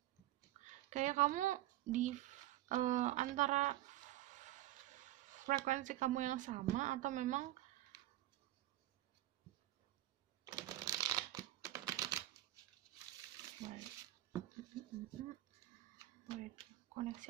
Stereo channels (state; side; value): quieter; left; 15.4 dB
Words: Kayak kamu di antara frekuensi kamu yang sama, atau memang